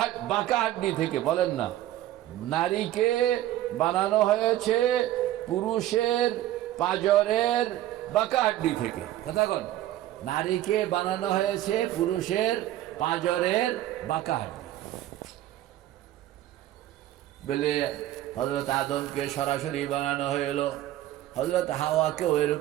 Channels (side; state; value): left; quieter; 13.8 dB